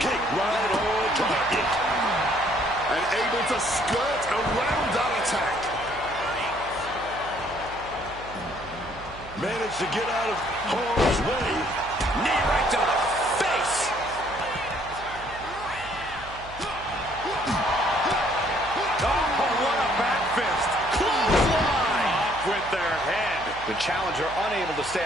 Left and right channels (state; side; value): noise; right; hum, 16 dB below the sound